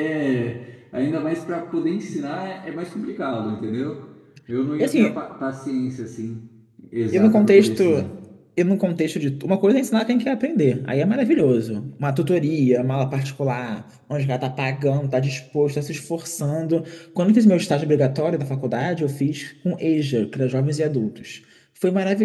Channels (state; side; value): identical; both; correlation 1.00